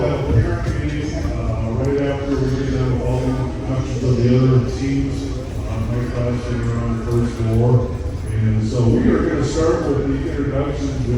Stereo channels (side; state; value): both; identical; correlation 1.00